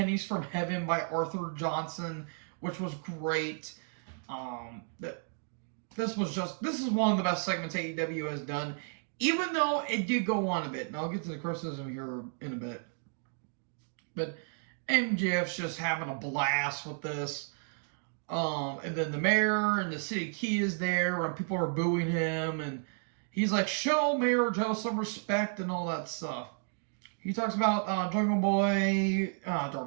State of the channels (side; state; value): left; silent; 56 dB below the other